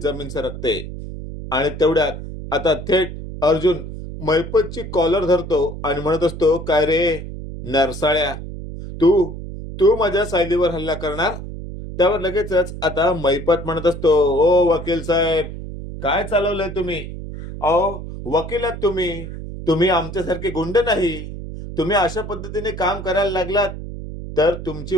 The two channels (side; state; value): right; noise; hum, 9 dB below the sound